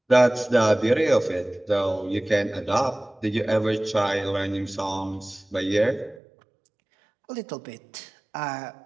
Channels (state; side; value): drops out; left; at 6.2 s